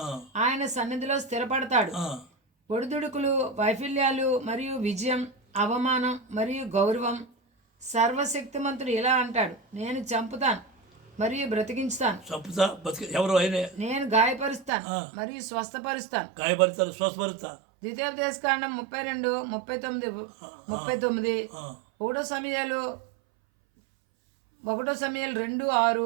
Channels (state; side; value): drops out; left; at 14.7 s